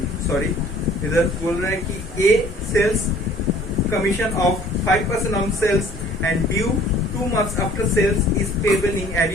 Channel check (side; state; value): both; normal; correlation 0.53